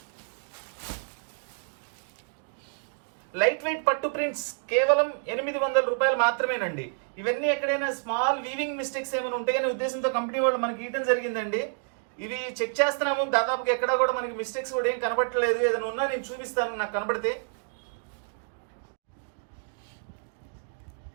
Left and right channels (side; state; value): left; silent; digital silence